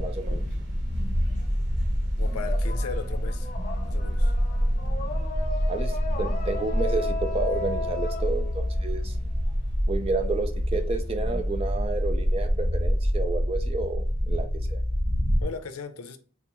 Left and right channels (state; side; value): normal; both; correlation 0.85